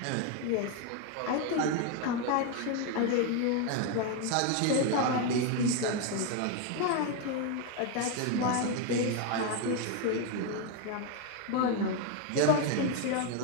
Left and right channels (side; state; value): both; different; correlation 0.01